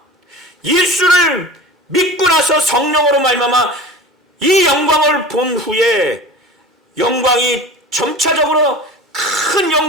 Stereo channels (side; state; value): both; normal; correlation 0.36